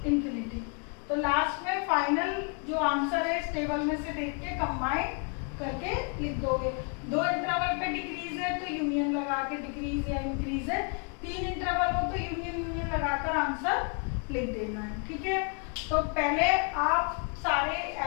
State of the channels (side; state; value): right; quieter; 39.3 dB